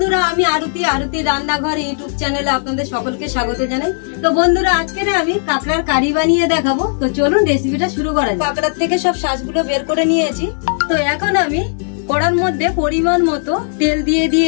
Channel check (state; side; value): silent; right; digital silence